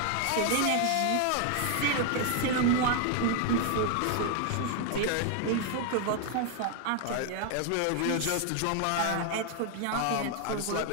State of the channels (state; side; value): different; both; correlation 0.00